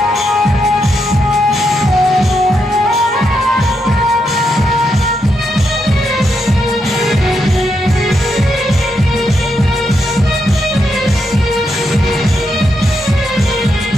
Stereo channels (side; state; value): both; normal; correlation 0.81